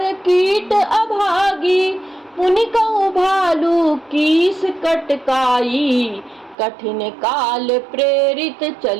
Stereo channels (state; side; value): drops out; left; at 6.6 s